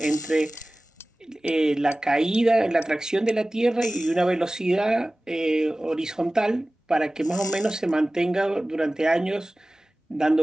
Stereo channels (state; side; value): normal; both; correlation 0.97